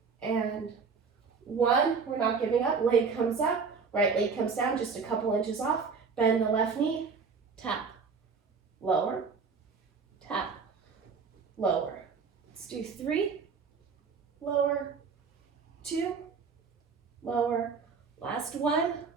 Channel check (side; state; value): left; quieter; 5.3 dB